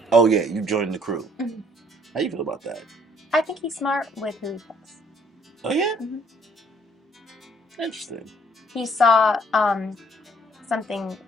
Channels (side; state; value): both; normal; correlation 0.63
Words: oh yeah, you joined the crew. Mm-hmm. How do you feel about that? I think he's smart with who he fucks. Oh yeah? Mm-hmm. Interesting. He saw something